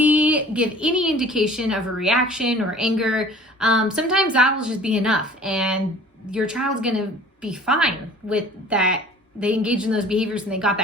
give any indication of a reaction or anger, sometimes that will just be enough, and your child's going to be fine with that. They engaged in those behaviors and they got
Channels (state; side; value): normal; both; correlation 0.48